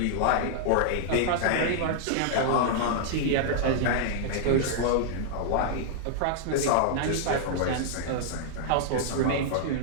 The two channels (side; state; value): both; different; correlation -0.01